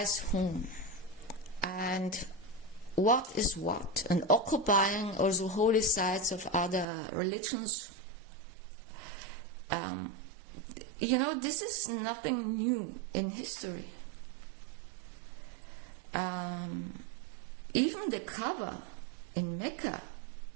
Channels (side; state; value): left; drops out; at 6.9 s